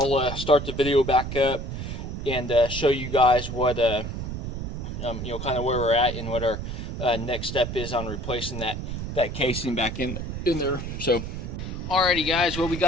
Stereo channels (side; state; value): right; noise; rumble, 6 dB below the sound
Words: start the video back up and show you guys what kind of where we're at and what our next step is on replacing that casing back in there. So alrighty guys, well, we